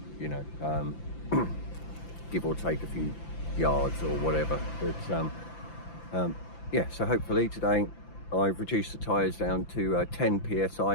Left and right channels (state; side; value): late; right; 5.9 ms